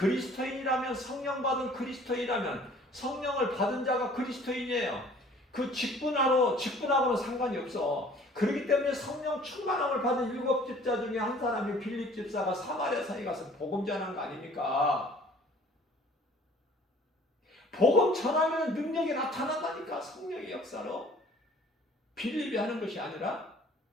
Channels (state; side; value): normal; both; correlation 0.52